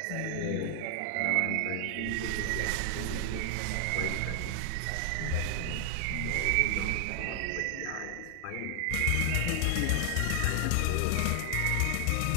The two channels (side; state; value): both; different; correlation 0.00